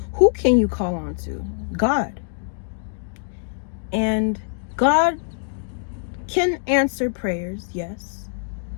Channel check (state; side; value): silent; right; 63 dB below the other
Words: who can you call on to? God. And God can answer prayers, yes.